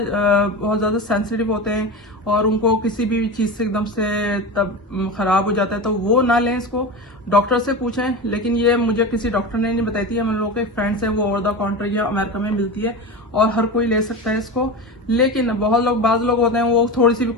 सेंसिटिव होते हैं और उनको किसी भी चीज़ से एकदम से तब ख़राब हो जाता है, तो वो ना लें इसको, डॉक्टर से पूछें। लेकिन ये मुझे किसी डॉक्टर ने नहीं बताई थी, हम लोगों के फ्रेंड्स हैं, वो ओवर द काउंटर या अमेरिका में मिलती है और हर कोई ले सकता है इसको। लेकिन बाज़ लोग होते हैं वो थोड़ी सी भी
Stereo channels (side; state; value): both; normal; correlation 0.25